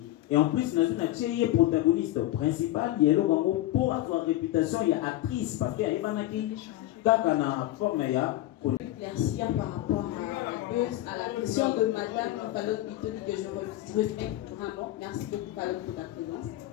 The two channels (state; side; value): quieter; right; 15.1 dB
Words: Et en plus, nous avons un protagoniste principal, il y a pour avoir réputation, il y a actrice, parce qu'il y a une forme, il y a éclaircir par rapport à la question de Madame Palot Bitoli que je respecte vraiment. Merci beaucoup Palot pour ta présence.